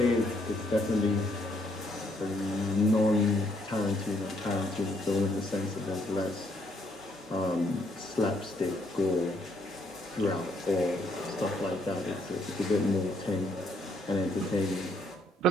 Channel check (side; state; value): both; normal; correlation 0.71